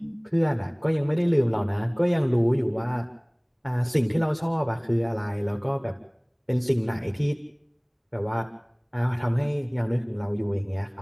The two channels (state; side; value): identical; both; correlation 1.00